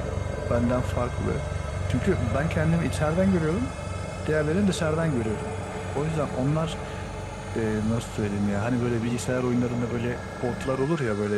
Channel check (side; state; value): both; identical; correlation 1.00